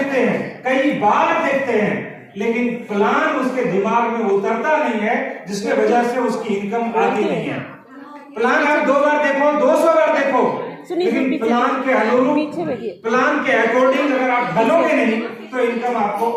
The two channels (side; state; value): both; identical; correlation 1.00